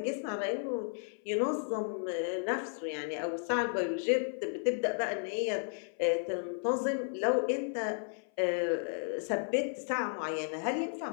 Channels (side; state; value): right; silent; 55 dB below the other